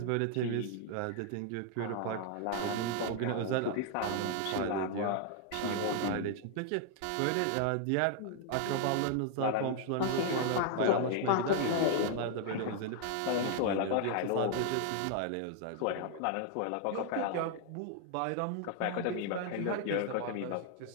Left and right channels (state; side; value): different; both; correlation 0.00